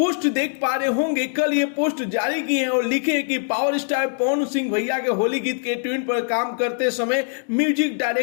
देख पा रहे होंगे, कल ये पोस्ट जारी की है और लिखे कि पावर स्टार पवन सिंह भैया के होली गीत के ट्यून पर काम करते समय म्यूजिक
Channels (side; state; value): right; silent; digital silence